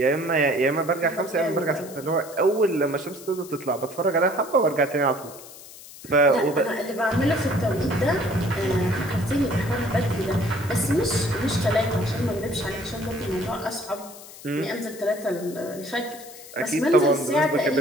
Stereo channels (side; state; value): left; noise; hiss, 17 dB below the sound